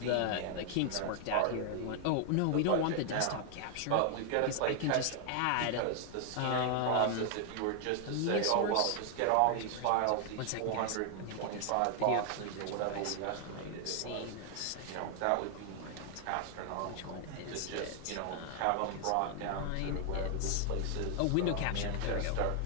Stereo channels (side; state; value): both; different; correlation 0.00